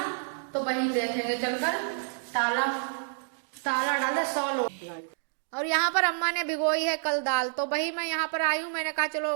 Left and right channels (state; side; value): silent; left; digital silence